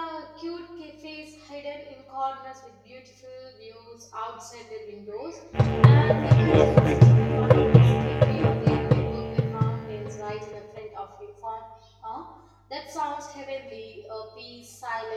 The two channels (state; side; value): identical; both; correlation 1.00